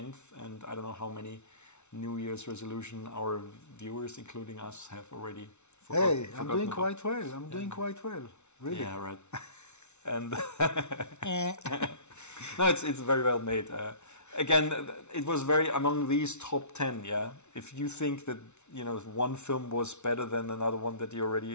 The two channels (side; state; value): right; late; 0.82 ms